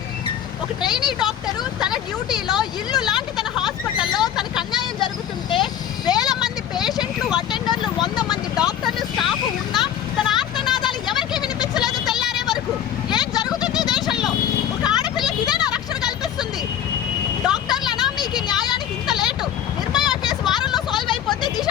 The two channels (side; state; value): right; quieter; 9.9 dB